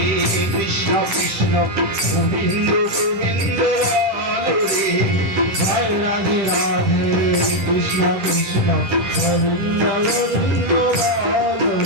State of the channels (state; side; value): late; left; 10 ms